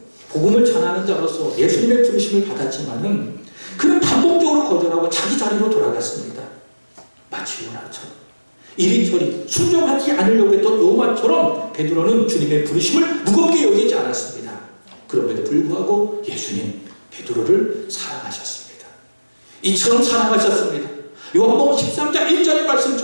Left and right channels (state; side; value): inverted; both; correlation -1.00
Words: 복음을 전하는 자로서 예수님의 부르심을 받았지만은 그는 반복적으로 거절하고 자기 자리로 돌아갔습니다. 마치 요나처럼 이리저리 순종하지 않으려고 했던 요나처럼 베드로는 주님의 부르심을 무겁게 여기지 않았습니다. 그럼에도 불구하고 예수님 베드로를 사랑하셨습니다. 이처럼 사랑하셨습니다. 요한복음 13장 1절의